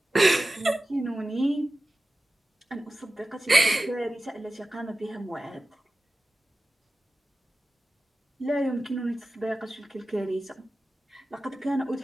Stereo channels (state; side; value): normal; both; correlation 0.94